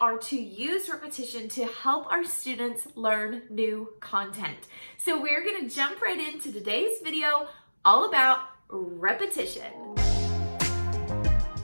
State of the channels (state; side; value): inverted; both; correlation -1.00